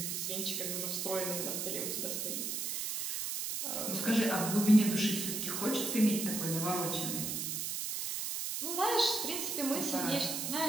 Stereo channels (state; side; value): noise; right; hiss, 2 dB below the sound